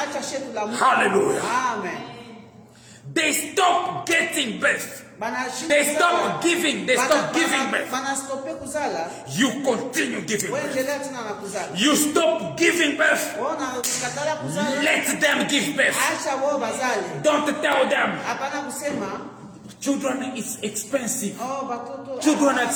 Hallelujah. Amen. They stop getting birth. They stop giving. They stop giving birth. You continue giving birth. You stop giving birth. Let them give birth. Don't tell them. Children is expensive. Children are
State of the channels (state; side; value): identical; both; correlation 1.00